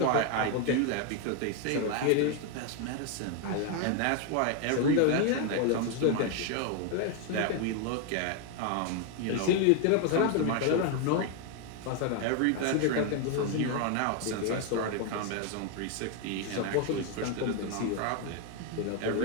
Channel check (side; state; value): both; different; correlation 0.01